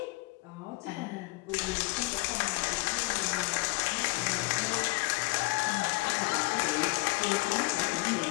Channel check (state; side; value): quieter; right; 25.4 dB